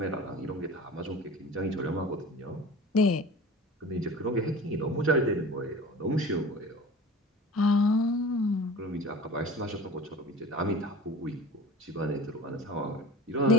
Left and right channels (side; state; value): both; normal; correlation 0.38